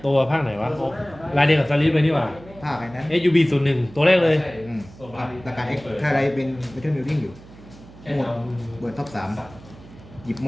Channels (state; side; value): noise; right; hum, 20 dB below the sound